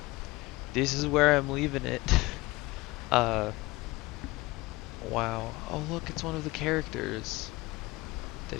this is where I'm leaving it. Wow. Oh look, it's one of the characters. Did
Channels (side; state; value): right; quieter; 21.3 dB